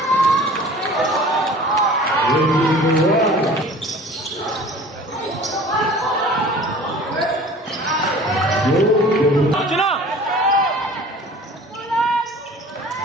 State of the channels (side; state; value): both; normal; correlation 0.45